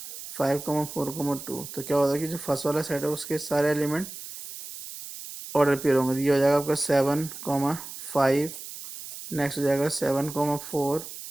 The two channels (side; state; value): right; noise; hiss, 11 dB below the sound